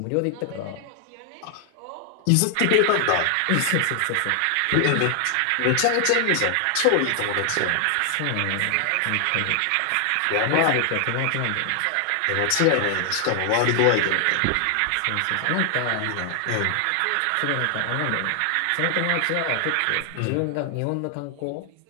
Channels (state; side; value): different; both; correlation 0.00